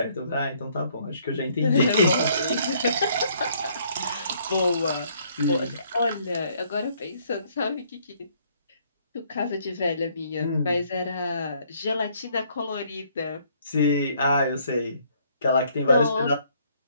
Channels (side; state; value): both; inverted; correlation -0.65